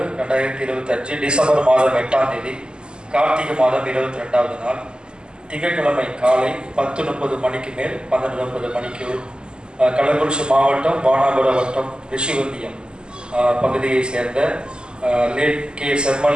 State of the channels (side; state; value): left; late; 0.048 ms